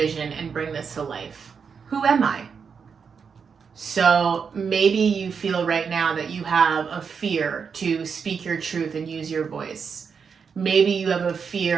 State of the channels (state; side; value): quieter; left; 6.1 dB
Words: and bring this to life? Who am I? So maybe you feel right now that you have a fear to speak your truth and use your voice. Maybe you have a